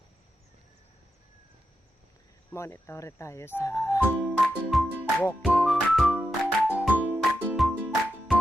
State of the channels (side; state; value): both; normal; correlation 0.87